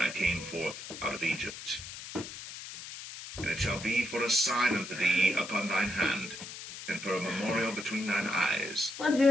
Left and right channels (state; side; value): noise; left; hiss, 11 dB below the sound